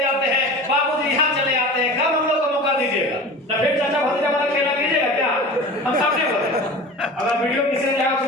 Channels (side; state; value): both; normal; correlation 0.36